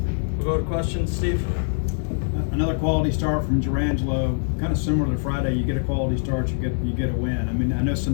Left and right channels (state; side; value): silent; right; digital silence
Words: We'll go to questions, Steve. Another quality start from Gerangelo, kind of similar to Friday. You get a quality start, you get a win. I mean, I know